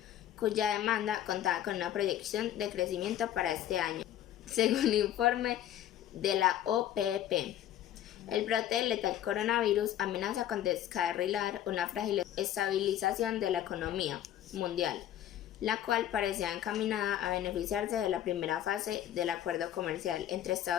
cuya demanda contaba con una proyección de crecimiento para este año, según un informe de la OPEP. El brote del letal coronavirus amenaza con descarrilar una frágil estabilización de la economía mundial, la cual parecía encaminada a beneficiarse de la primera fase del acuerdo comercial entre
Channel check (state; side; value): quieter; right; 11.8 dB